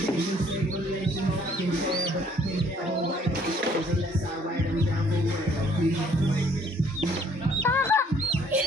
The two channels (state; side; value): normal; both; correlation 0.61